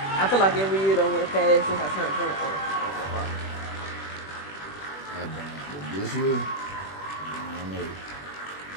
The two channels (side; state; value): right; late; 21 ms